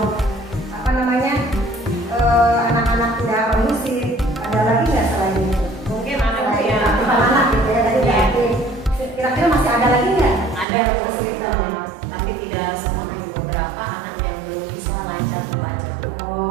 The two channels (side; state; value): left; drops out; at 10.7 s